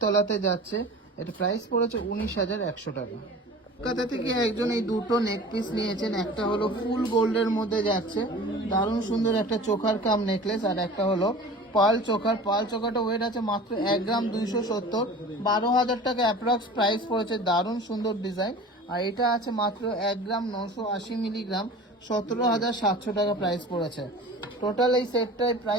যাচ্ছে। এটা প্রাইস পড়েছে 19,100 টাকা। কলকাতা থেকে একজন এই দুটো নেক পিস নিয়েছেন। একটা হলো ফুল গোল্ডের মধ্যে যাচ্ছে, দারুণ সুন্দর একটা চোখার কাম নেকলেস। আর একটা হলো পাল চোখার। পাল চোখাটা ওয়েট আছে মাত্র 1 গ্রাম 270, 12,000 টাকা অ্যাপ্রক্স প্রাইস পড়েছে। দারুণ সুন্দর ডিজাইন। আর এটা আছে মাত্র 1 গ্রাম 980 মিলিগ্রাম, 17,700 টাকা প্রাইস পড়েছে। টোটাল এই সেটটায়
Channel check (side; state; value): both; normal; correlation 0.39